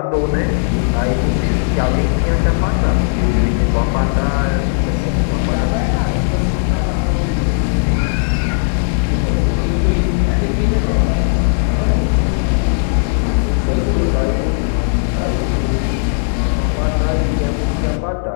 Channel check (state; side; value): silent; right; digital silence